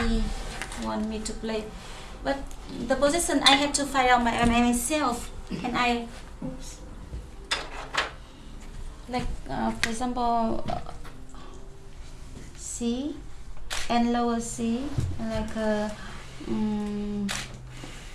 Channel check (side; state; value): both; identical; correlation 1.00